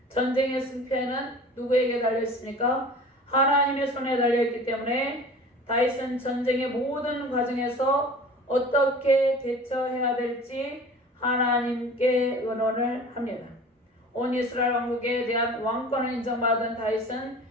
전쟁의 승패는 누구에게 달려있습니까? 하나님의 손에 달려있기 때문에 다윗은 전쟁의 모든 과정에서 어떻게 대처해야 될지 하나님께 의논을 합니다. 온 이스라엘 왕국에 대한 왕권을 인정받은 다윗은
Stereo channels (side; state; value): both; normal; correlation 0.41